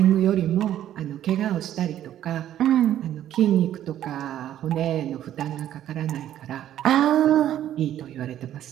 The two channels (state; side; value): quieter; left; 11.7 dB